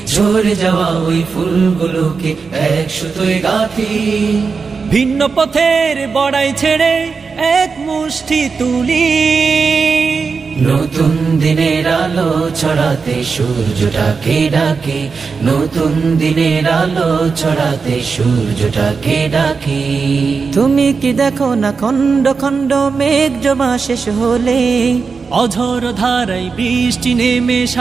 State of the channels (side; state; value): left; quieter; 5.0 dB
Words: ঝরে যাওয়া ওই ফুলগুলোকে এক সুতোয় গাঁথি। ভিন্ন পথের বড়াই ছেড়ে এক মুষ্টি তুলি, নতুন দিনের আলো ছড়াতে সূর্যটাকে ডাকি, নতুন দিনের আলো ছড়াতে সূর্যটাকে ডাকি। তুমি কি দেখো না খণ্ড খণ্ড মেঘ জমা শেষ হলে, অঝোর ধারায় বৃষ্টি নেমে